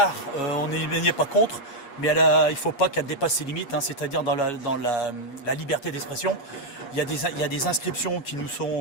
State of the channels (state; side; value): late; right; 8.4 ms